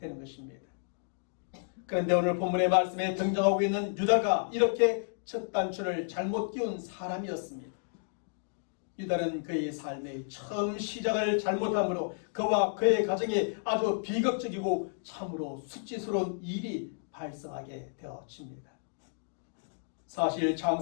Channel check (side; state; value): right; silent; digital silence